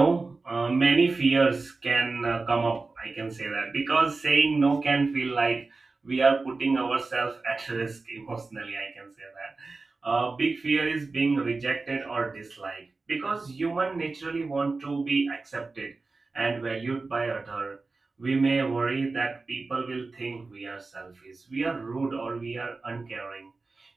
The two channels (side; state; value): left; quieter; 3.8 dB